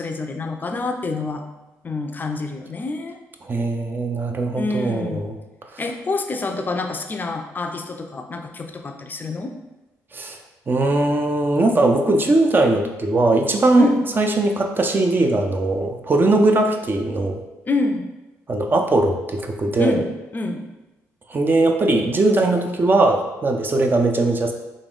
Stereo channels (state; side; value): normal; both; correlation 0.79